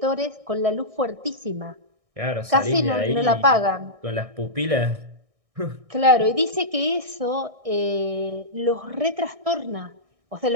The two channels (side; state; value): left; late; 1.6 ms